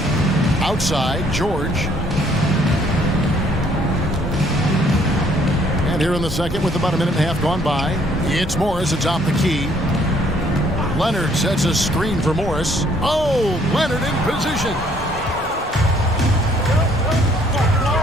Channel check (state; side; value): normal; both; correlation 0.64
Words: Outside, George. And here in the second with about a minute and a half gone by, it's Morris atop the key. Leonard sets a screen for Morris. Oh, Leonard in position.